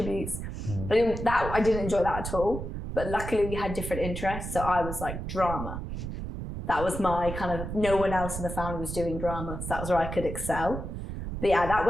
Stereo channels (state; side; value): noise; right; rumble, 6 dB below the sound